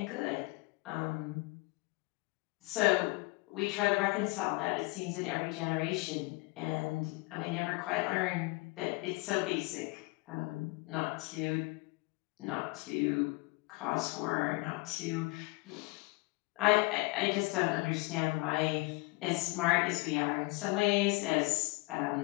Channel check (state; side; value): quieter; right; 25.3 dB